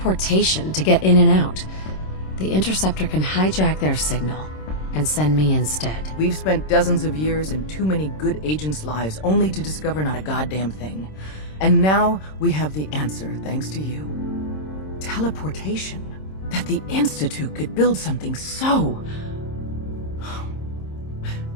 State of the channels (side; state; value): right; late; 26 ms